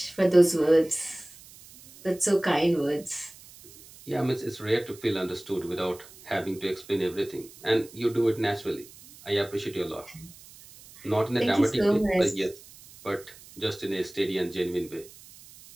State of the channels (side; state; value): right; noise; hiss, 21 dB below the sound